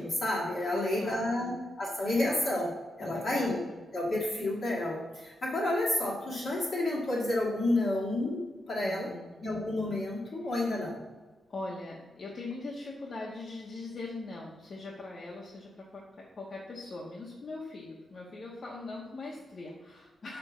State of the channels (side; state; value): both; normal; correlation 0.84